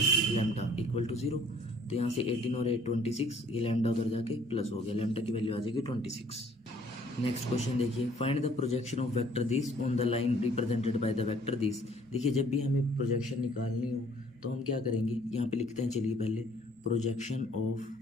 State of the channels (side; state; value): both; normal; correlation 0.58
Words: लैम्डा इक्वल टू 0। तो यहाँ से 18 और 8 26, ये लैम्डा उधर जाके प्लस हो गया, लैम्डा की वैल्यू आ जाएगी 26। नेक्स्ट क्वेश्चन देखिए, find the projection of vector this on the line represented by the vector this. देखिए जब भी हमें प्रोजेक्शन निकालनी हो तो हम क्या करेंगे, यहाँ पे लिखते हैं चलिए पहले प्रोजेक्शन ऑफ,